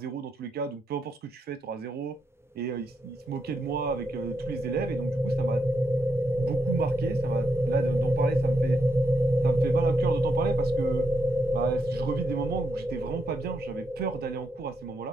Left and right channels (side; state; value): both; normal; correlation 0.81